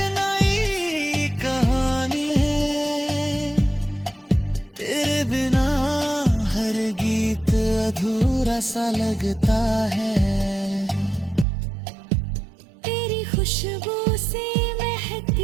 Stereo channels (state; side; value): drops out; left; at 11.5 s